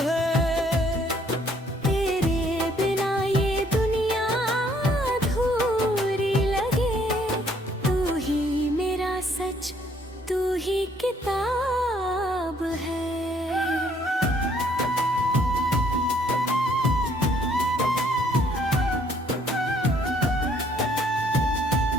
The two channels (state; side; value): normal; both; correlation 0.64